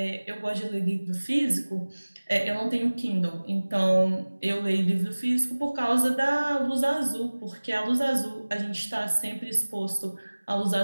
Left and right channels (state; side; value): inverted; both; correlation -1.00